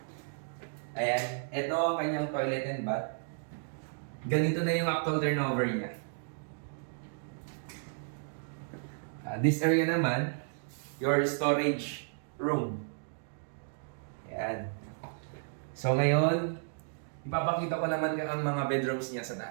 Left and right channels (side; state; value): left; silent; digital silence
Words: Ayan, ito ang kanyang toilet and bath. Ganito na yung actual turnover niya. This area naman, your storage room. Ayan. So ngayon, ipapakita ko naman ang mga bedrooms niya sa